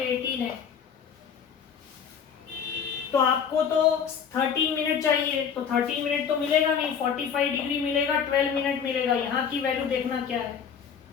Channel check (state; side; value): quieter; right; 7.3 dB